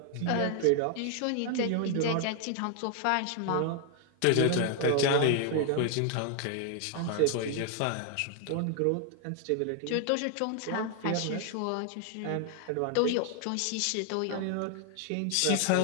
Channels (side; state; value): both; different; correlation 0.00